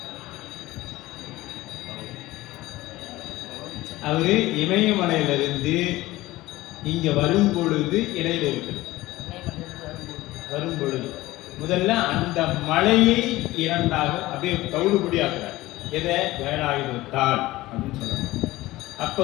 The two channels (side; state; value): right; quieter; 17.9 dB